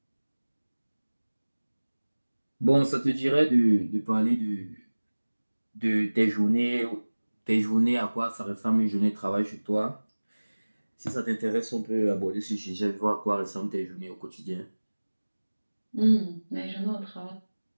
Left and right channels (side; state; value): both; inverted; correlation -1.00